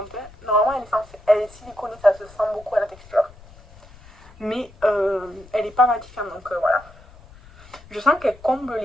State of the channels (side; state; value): left; noise; rumble, 22 dB below the sound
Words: Hein. Normalement, elle est siliconée, ça se sent beaucoup à la texture. Mais elle n'est pas matifiante, donc voilà. Je sens qu'elle comble